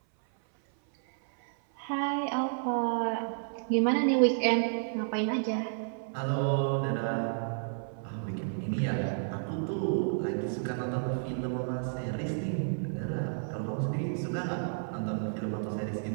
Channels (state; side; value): silent; left; 57 dB below the other